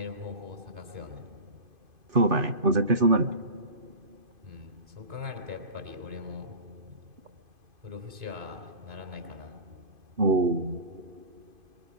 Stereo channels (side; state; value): left; late; 2.5 ms